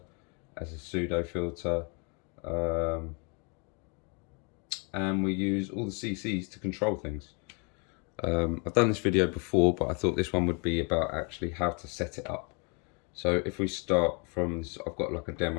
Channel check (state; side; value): quieter; right; 34.5 dB